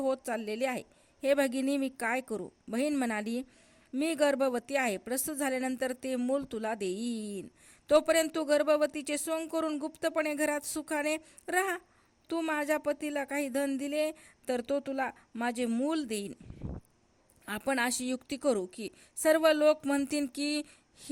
चाललेले आहे. हे भगिनी, मी काय करू? बहीण म्हणाली, मी गर्भवती आहे. प्रसूत झाल्यानंतर ते मूल तुला देईन. तोपर्यंत तू गर्भवतीचे सोंग करून गुप्तपणे घरात सुखाने राहा. तू माझ्या पतीला काही धन दिले तर तो तुला माझे मूल देईन. आपण अशी युक्ती करू की सर्व लोक म्हणतील की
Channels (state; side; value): identical; both; correlation 1.00